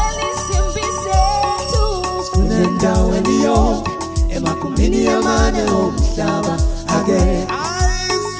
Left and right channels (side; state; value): both; identical; correlation 1.00